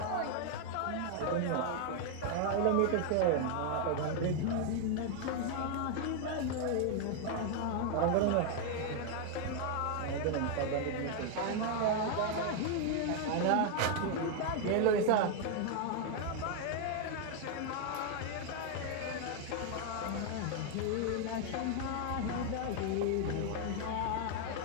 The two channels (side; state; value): both; different; correlation 0.00